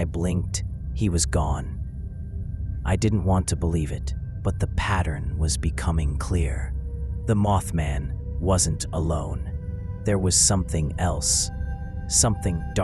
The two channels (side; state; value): both; identical; correlation 1.00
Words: blinked, he was gone. I didn't want to believe it, but the pattern was becoming clear. The Mothman wasn't alone. There was something else, something